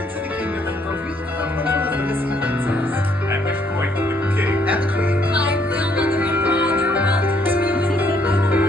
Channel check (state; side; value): normal; both; correlation 0.68